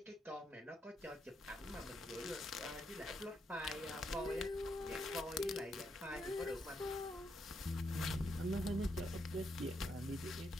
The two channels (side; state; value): both; normal; correlation 0.79